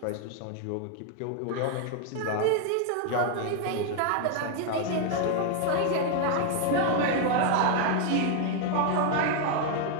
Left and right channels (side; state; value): both; different; correlation 0.00